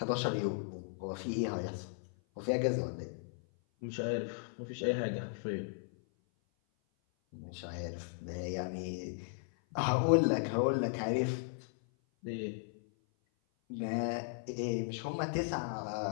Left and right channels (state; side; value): silent; right; 54 dB below the other